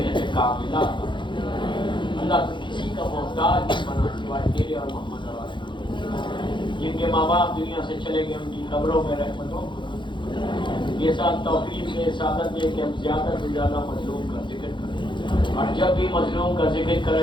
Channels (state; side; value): late; right; 0.23 ms